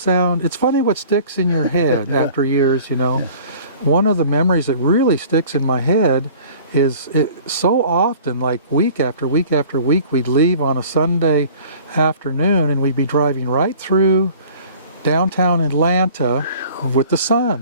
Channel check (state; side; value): inverted; both; correlation -0.47